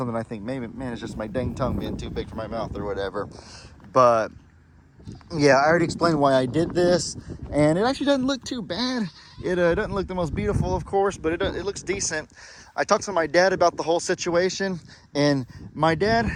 I think, maybe, man, it's just my dang tongue being too big for my mouth or whatever. But yeah, I already explained why I did this, and it actually doesn't look too bad. It doesn't look the most beautiful, of course, but it looks decent. I talked to my dad about the whole situation, and my dad,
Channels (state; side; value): identical; both; correlation 1.00